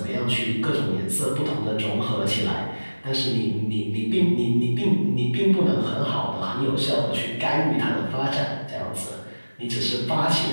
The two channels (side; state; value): both; inverted; correlation -1.00